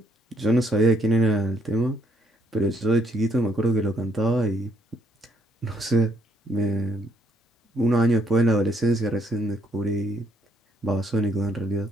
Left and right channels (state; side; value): normal; both; correlation 0.70